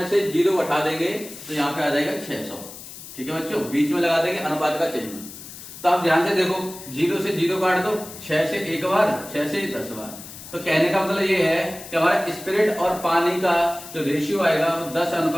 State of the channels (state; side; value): noise; left; hiss, 14 dB below the sound